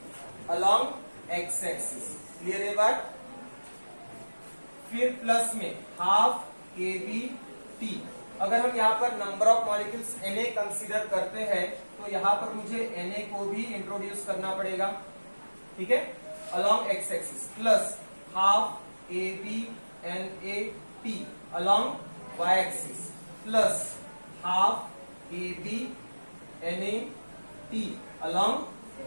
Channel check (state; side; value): inverted; both; correlation -1.00